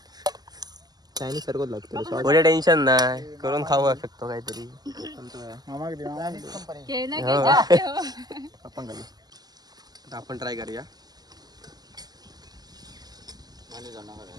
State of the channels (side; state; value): left; late; 0.20 ms